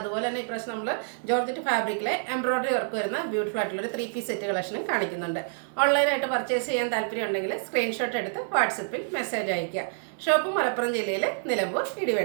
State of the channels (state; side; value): silent; left; 57 dB below the other